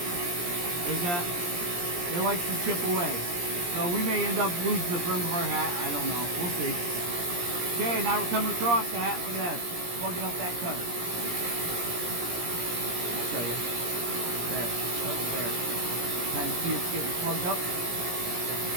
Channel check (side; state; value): left; late; 17 ms